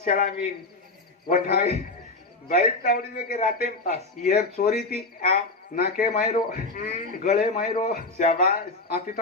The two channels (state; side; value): quieter; right; 3.3 dB